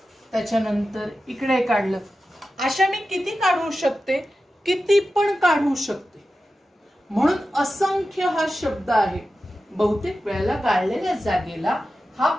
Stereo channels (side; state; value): both; normal; correlation 0.93